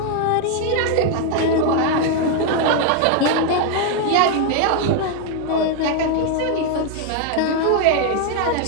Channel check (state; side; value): different; both; correlation 0.00